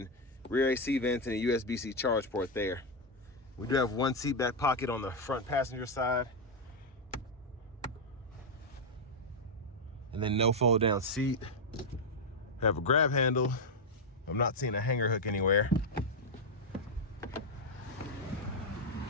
rear AC vents and a USB-C charge port there. We do have 1 seat back pocket on the front passenger side. And then no fold down seat. Have a grab handle. I'm not seeing a hanger hook anywhere.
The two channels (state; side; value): normal; both; correlation 0.02